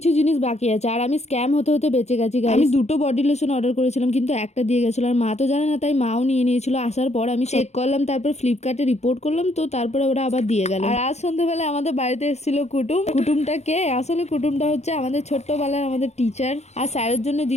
জিনিস বাকি আছে। আর আমি স্ক্যাম হতে হতে বেঁচে গেছি। আমি দুটো বডি লোশন অর্ডার করেছিলাম, কিন্তু একটা দিয়ে গেছিল। আর মা তো জানে না, তাই মাও নিয়ে নিয়েছিল। আসার পর আমি চেক করলাম, তারপর ফ্লিপকার্টে রিপোর্ট করলাম, তো তারপরে ওরা আবার দিয়ে গেল। আর আজ সন্ধ্যাবেলায় আমাদের বাড়িতে এসেছিল কুটুম। কুটুমটা কে? আসলে কুটুমটা হচ্ছে আমাদের ছোট্টবেলার আমাদের টিচার। আর স্যারের জন্য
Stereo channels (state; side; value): late; right; 0.32 ms